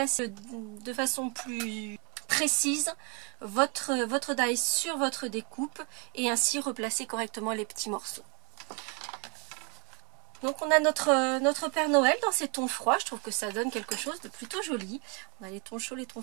de façon plus précise votre die sur votre découpe et ainsi replacer correctement les petits morceaux. Donc on a notre Père Noël dans ces tons froids. Je trouve que ça donne quelque chose de plutôt joli. On a les tons chauds, les tons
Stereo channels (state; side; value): quieter; left; 34.6 dB